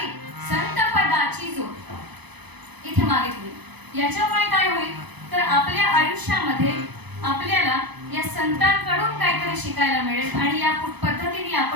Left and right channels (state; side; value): late; left; 0.99 ms